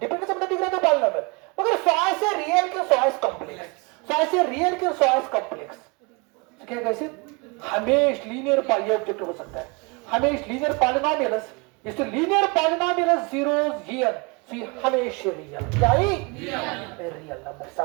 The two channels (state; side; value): quieter; left; 29.1 dB